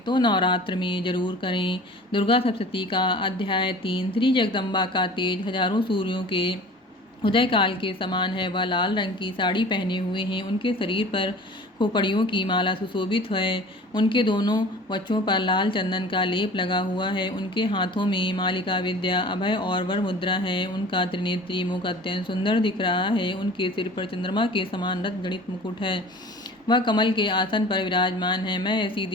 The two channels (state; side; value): normal; both; correlation 0.43